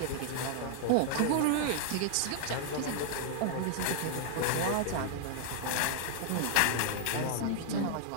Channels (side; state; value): both; different; correlation 0.00